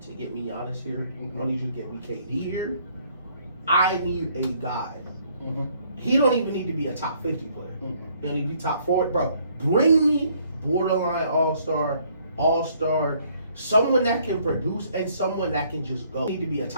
to get me honest here. I don't need you to get me KD here. I need a guy. Mm-hmm. He don't even need to be a top 50 player. Mm-hmm. He don't need to be top 40. Bro, bring me borderline all-star, someone that can produce and someone that can just go. He need to be a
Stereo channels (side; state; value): both; inverted; correlation -0.64